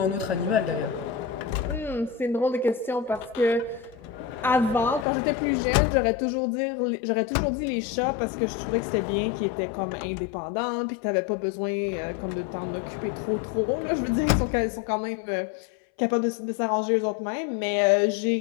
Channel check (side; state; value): right; drops out; at 5.1 s